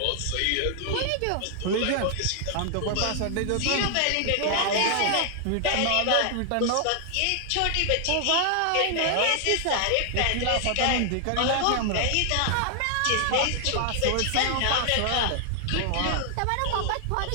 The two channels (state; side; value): different; both; correlation 0.00